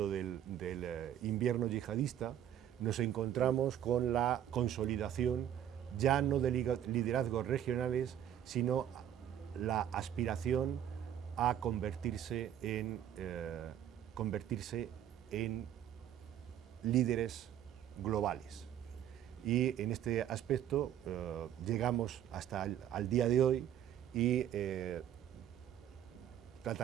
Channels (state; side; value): quieter; left; 10.5 dB